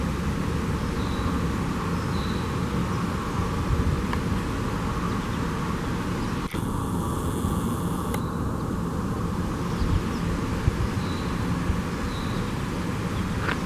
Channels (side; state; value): both; identical; correlation 1.00